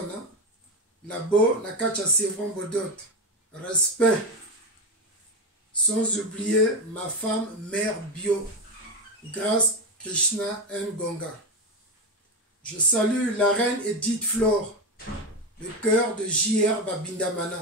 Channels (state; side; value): normal; both; correlation 0.14